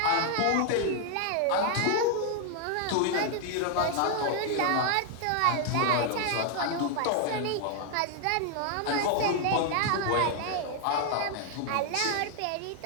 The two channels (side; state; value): both; different; correlation 0.00